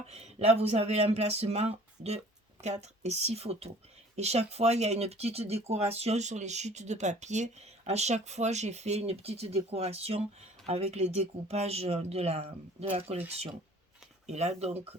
là vous avez l'emplacement de 4 et 6 photos. Et chaque fois, il y a une petite décoration sur les chutes de papier. À chaque fois, j'ai fait une petite décoration avec les découpages de la collection. Et là, donc,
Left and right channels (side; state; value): both; normal; correlation 0.50